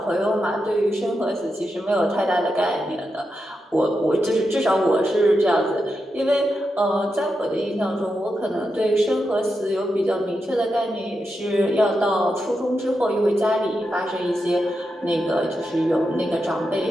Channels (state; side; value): normal; both; correlation 0.87